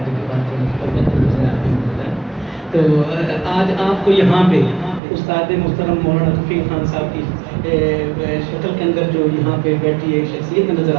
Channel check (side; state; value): left; drops out; at 5.0 s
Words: تو آج آپ کو یہاں پہ استاد محترم مولانا رفیق خان صاحب کی شکل کے اندر جو یہاں پہ بیٹھی ایک شخصیت نظر